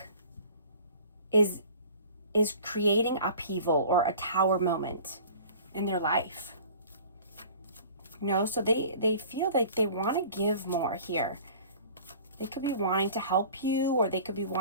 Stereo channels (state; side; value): inverted; both; correlation -0.45